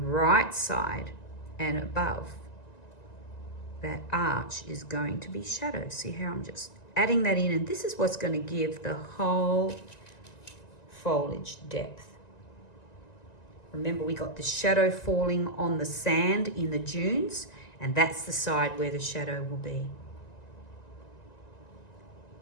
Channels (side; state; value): right; late; 1.9 ms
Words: side and above that arch is going to be shadow. See how I'm just adding that in, and this is what's going to give the whole foliage depth. Remember, we got the shadow falling on the sand in the dunes, and that's the side where the shadow will be.